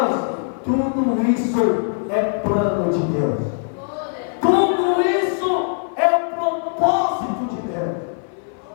tudo isso é plano de Deus. Tudo isso é o propósito de Deus.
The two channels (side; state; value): right; silent; 64 dB below the other